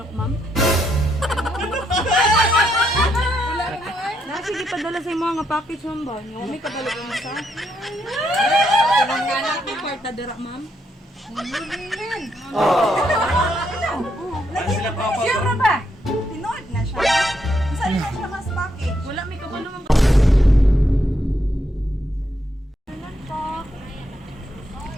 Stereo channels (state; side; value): normal; both; correlation 0.77